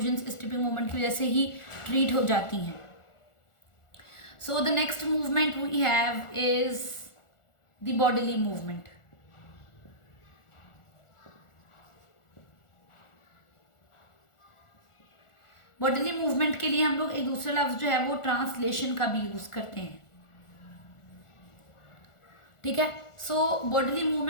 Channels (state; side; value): late; right; 1.4 ms